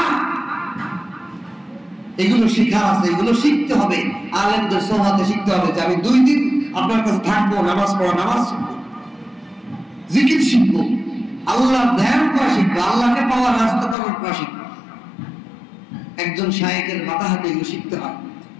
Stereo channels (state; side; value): drops out; right; at 14.0 s